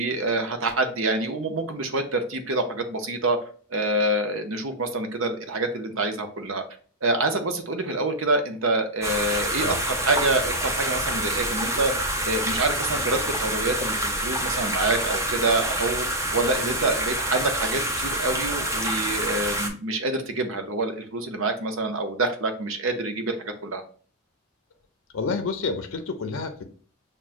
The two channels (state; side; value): normal; both; correlation -0.06